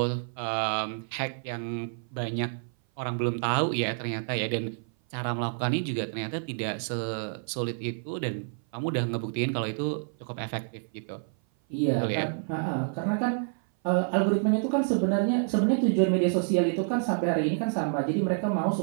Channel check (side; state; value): left; silent; 56 dB below the other